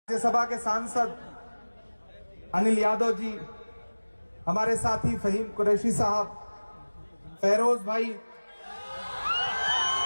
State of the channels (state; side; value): inverted; both; correlation -1.00